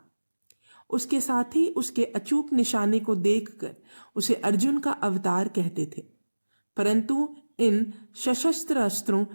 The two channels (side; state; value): both; inverted; correlation -1.00